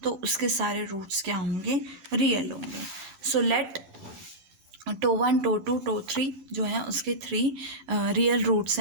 तो उसके सारे roots क्या होंगे, real होंगे। So let tau 1 tau 2 tau 3 जो है उसके 3 real roots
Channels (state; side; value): late; left; 12 ms